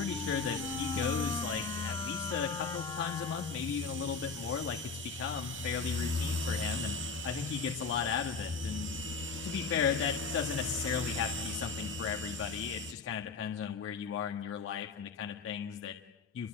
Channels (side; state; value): right; quieter; 4.9 dB